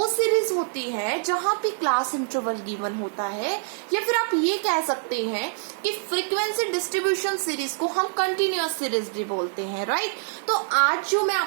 सीरीज होती है जहां पे क्लास इंटरवल गिवन होता है, या फिर आप ये कह सकते हैं कि फ्रीक्वेंसी डिस्ट्रीब्यूशन सीरीज को हम कंटिन्यूअस सीरीज भी बोलते हैं, राइट। तो आज जो मैं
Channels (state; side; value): silent; left; digital silence